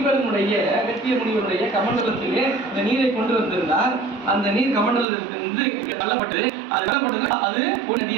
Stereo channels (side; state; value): left; drops out; at 5.1 s